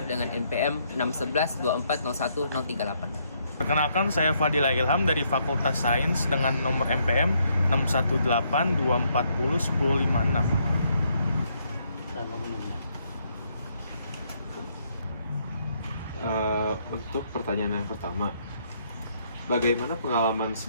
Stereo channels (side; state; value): both; inverted; correlation -0.72